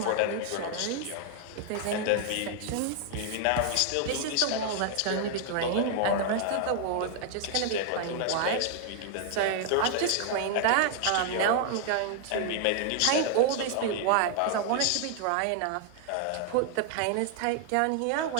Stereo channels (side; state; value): both; different; correlation 0.00